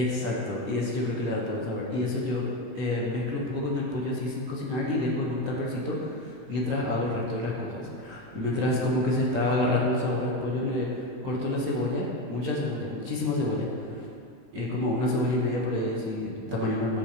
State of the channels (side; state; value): left; late; 22 ms